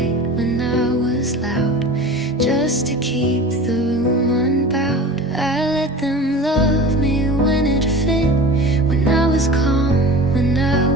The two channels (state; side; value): normal; both; correlation 0.36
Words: when I was loud, just to keep the room unbowed. I let them love me when it fit, when I was calm, when I